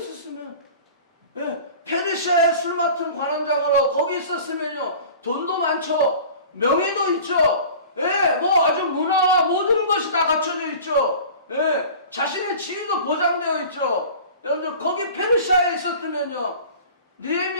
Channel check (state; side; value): inverted; both; correlation -0.41